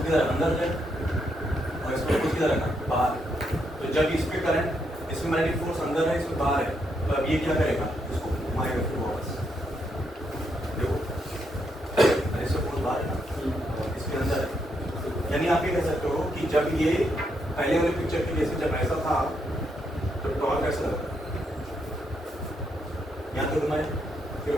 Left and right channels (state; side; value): normal; both; correlation 0.78